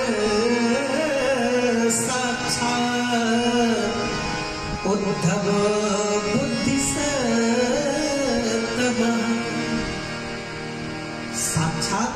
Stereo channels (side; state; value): both; identical; correlation 1.00